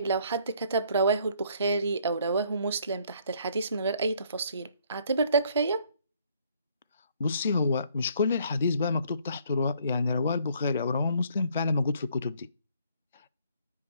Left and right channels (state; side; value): inverted; both; correlation -0.63